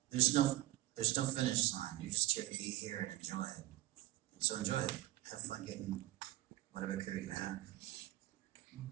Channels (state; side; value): quieter; left; 17.1 dB